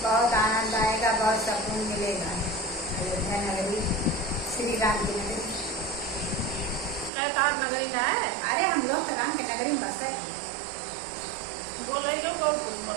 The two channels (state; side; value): drops out; left; at 7.1 s